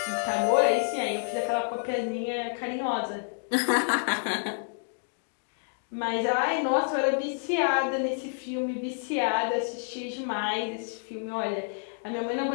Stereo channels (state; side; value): silent; right; digital silence